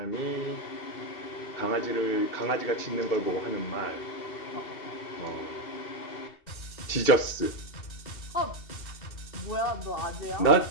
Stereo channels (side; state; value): right; late; 2.7 ms